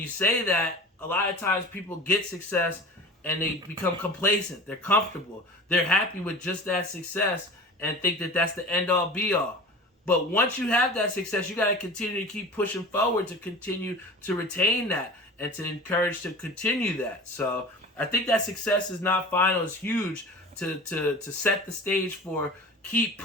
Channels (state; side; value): normal; both; correlation 0.36